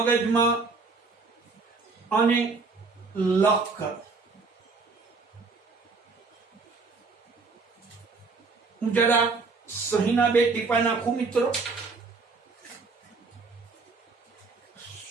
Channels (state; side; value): quieter; left; 4.2 dB